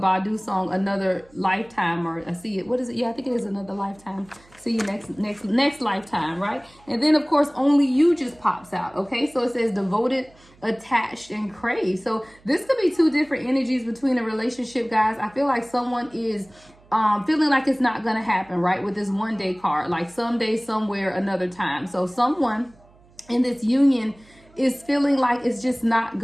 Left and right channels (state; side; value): noise; right; hum, 28 dB below the sound